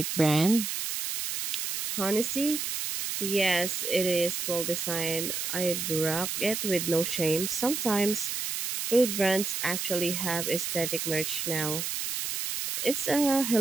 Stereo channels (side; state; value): right; noise; hiss, 3 dB below the sound